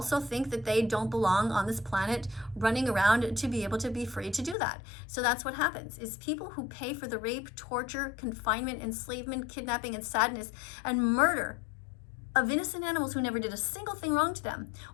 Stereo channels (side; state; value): right; drops out; at 4.5 s